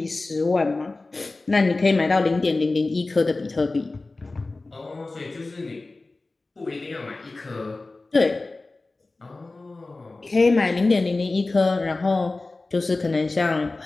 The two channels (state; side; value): quieter; right; 3.3 dB